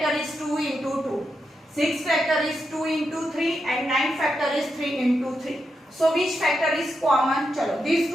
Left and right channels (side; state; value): both; normal; correlation 0.85